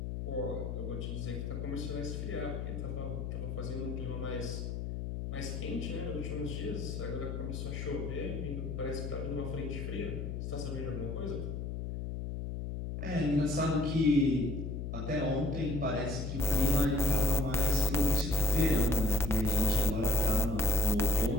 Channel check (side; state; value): left; noise; hum, 5 dB below the sound